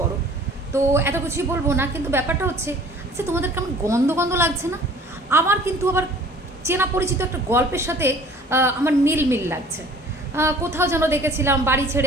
বড়, তো এত কিছুই বলবো না। কিন্তু ব্যাপারটা হচ্ছে, আচ্ছা তোমাদের কেমন গন্ধ গন্ধ লাগছে না? আমার কিন্তু আবার চেনা পরিচিত একটা গল্পের সাথে আমার মিল লাগছে। কোথাও যেন দেখেছিলাম বাড়ি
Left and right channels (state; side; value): normal; both; correlation 0.50